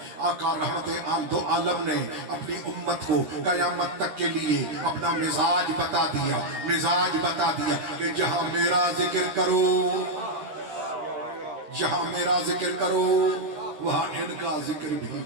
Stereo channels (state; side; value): late; left; 13 ms